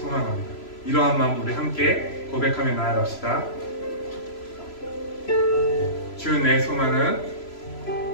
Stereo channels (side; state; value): right; late; 3.0 ms